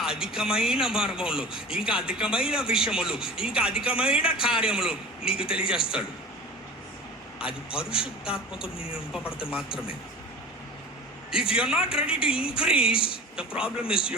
అధికమైన మార్గంలో, ఇంకా అధికమైన విషయములు, ఇంకా అధికమైన కార్యములు నీకు తెలియజేస్తాడు. అది పరిశుద్ధాత్మతో నేను నింపబడితే మాత్రమే. If you are not ready to increase, the problem is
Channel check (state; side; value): normal; both; correlation 0.39